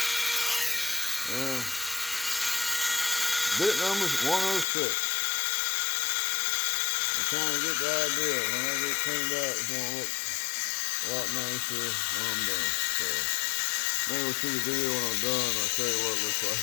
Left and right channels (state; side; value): drops out; right; at 4.7 s